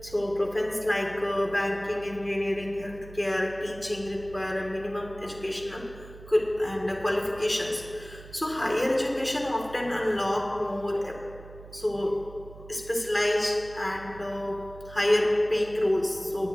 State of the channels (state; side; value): noise; right; hum, 17 dB below the sound